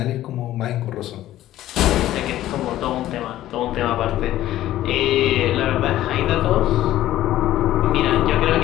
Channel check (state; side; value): quieter; right; 13.9 dB